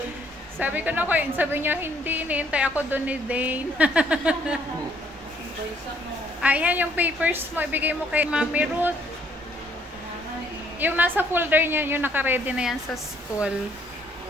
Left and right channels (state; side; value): normal; both; correlation 0.65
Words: Sabi ko na ko, sabi niya hindi. Hinihintay ako dun ni Dane. Ayan yung papers mo. Ibigay mo kay Mami Ruth. Yung nasa folder niya, yung naka-ready na yan sa school.